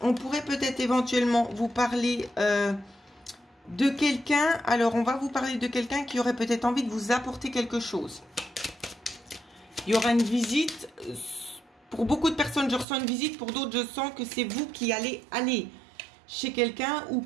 On pourrait peut-être éventuellement vous parler de quelqu'un. Alors, on va vous parler de quelqu'un qui aurait peut-être envie de vous apporter quelque chose. Il y aura une visite. Pour beaucoup de personnes, je ressens une visite. Pour d'autres, je sens que c'est vous qui allez aller chez quelqu'un ou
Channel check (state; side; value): drops out; left; at 12.9 s